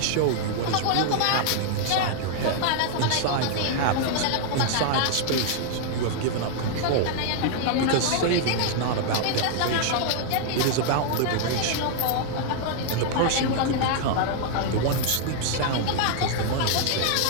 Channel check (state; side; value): different; both; correlation 0.00